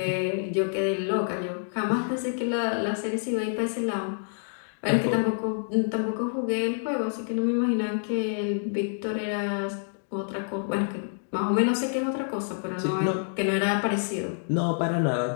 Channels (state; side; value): silent; right; digital silence